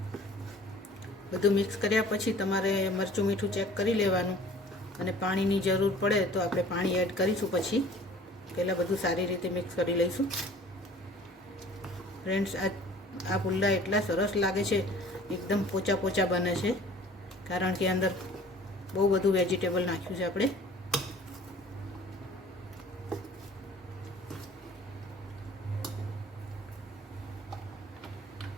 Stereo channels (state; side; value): normal; both; correlation 0.49